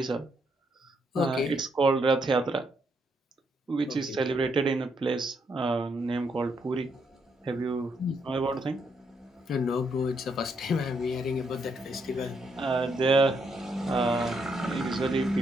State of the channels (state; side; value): normal; both; correlation 0.76